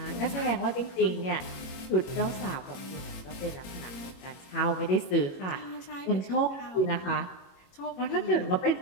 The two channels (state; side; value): late; right; 22 ms